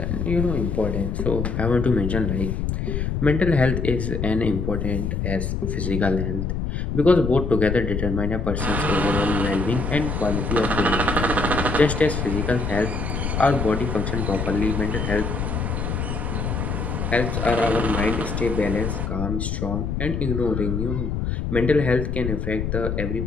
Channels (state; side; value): noise; left; rumble, 2 dB below the sound